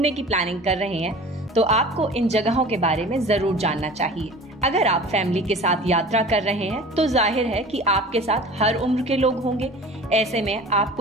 की प्लानिंग कर रहे हैं तो आपको इन जगहों के बारे में जरूर जानना चाहिए। अगर आप फैमिली के साथ यात्रा कर रहे हैं तो जाहिर है कि आपके साथ हर उम्र के लोग होंगे। ऐसे में आप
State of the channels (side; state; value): both; normal; correlation 0.41